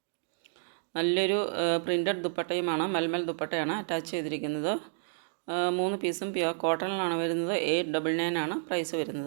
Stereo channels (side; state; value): left; silent; digital silence